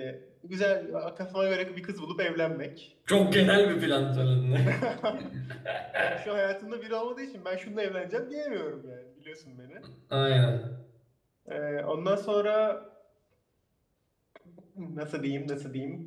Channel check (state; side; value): identical; both; correlation 1.00